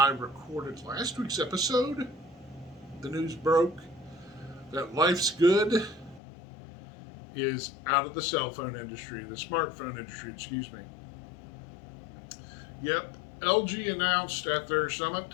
recorded last week's episode. The news broke that Life's Good is out of the cell phone industry, the smartphone industry, excuse me. Yep, LG announced at their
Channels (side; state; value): right; drops out; at 6.2 s